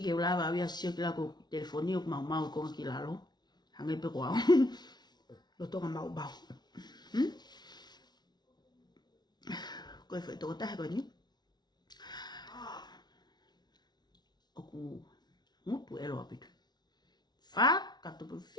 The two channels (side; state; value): right; late; 0.20 ms